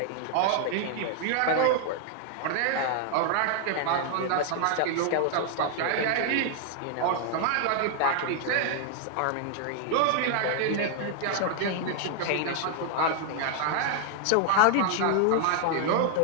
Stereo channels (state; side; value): different; both; correlation 0.00